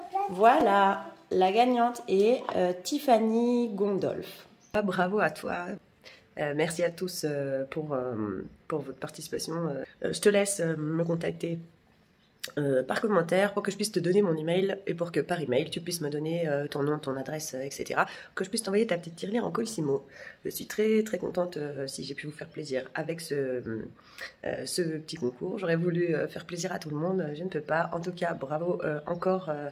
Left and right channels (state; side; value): identical; both; correlation 1.00